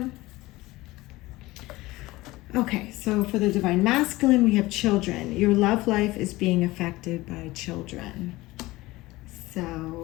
Okay, so for the Divine Masculine, we have children. Your love life is being affected by children. So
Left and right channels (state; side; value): quieter; right; 19.5 dB